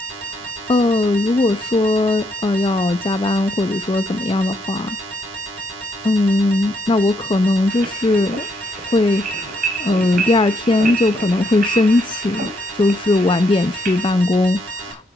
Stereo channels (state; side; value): normal; both; correlation 0.75